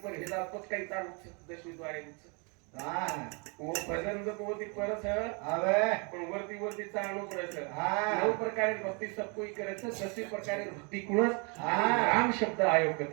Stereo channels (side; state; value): left; quieter; 33.5 dB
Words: पर हे जावत काही ताळ 10वे द्वारे હા वो भजन जो कोती परस હવે पण वरती वरती चालणं परस हा 9 प्रकारे भक्ती सब कोई करे છે 10 प्रकारे भक्ती कुणस हा. राम शब्द आयोग